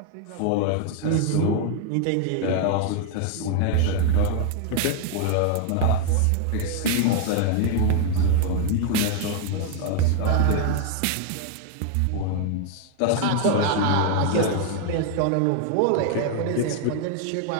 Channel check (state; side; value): different; both; correlation 0.00